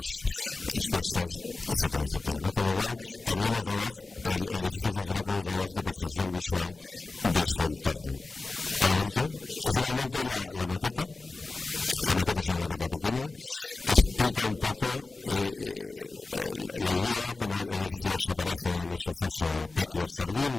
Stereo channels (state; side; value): quieter; right; 3.5 dB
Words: crestas, etcétera, etcétera, ¿no? Con lo cual también el edificio funciona como un reloj de percepción visual de su entorno. Adelante. Y finalmente la maqueta. La maqueta es una maqueta pequeña que explica un poco la idea, cómo el edificio desaparece en ese foso